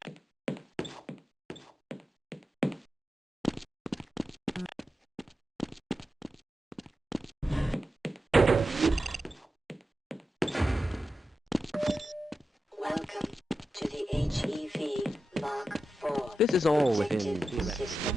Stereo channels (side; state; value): both; normal; correlation 0.90